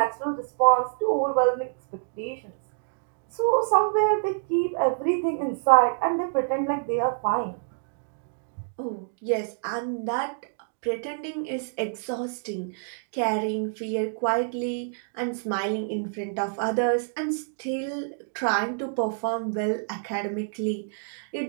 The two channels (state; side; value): silent; left; digital silence